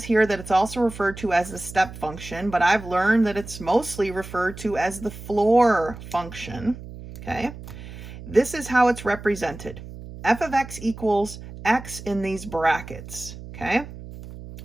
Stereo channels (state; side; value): noise; right; hum, 13 dB below the sound